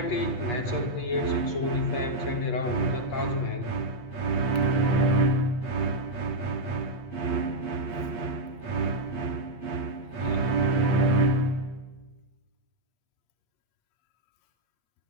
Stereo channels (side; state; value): right; late; 8.4 ms